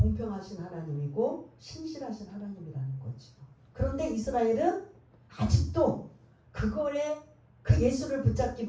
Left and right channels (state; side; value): identical; both; correlation 1.00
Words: 하나님이고 신실하신 하나님이라는 거죠. 그런데 이스라엘은 아직도 그거에 그 예수를